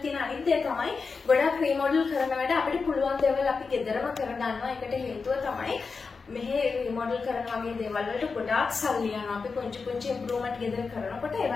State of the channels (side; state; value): right; quieter; 4.8 dB